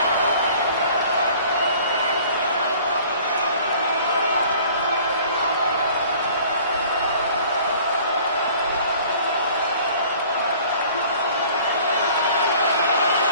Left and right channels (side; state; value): both; inverted; correlation -0.51